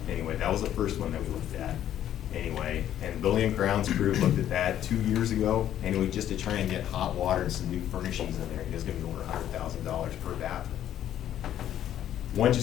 Anyway, that was the first one that we looked at, anyway. And Building and Grounds crew looked at that 2 years ago, anyway, just to try and get hot water and some new furnishings in there. It was gonna be over $100,000 per bathroom. Once you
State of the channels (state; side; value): quieter; right; 11.2 dB